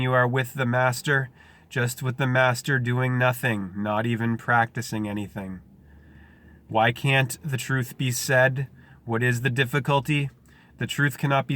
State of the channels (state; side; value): identical; both; correlation 1.00